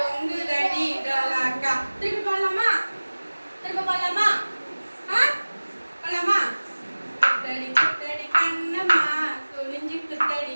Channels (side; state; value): both; inverted; correlation -1.00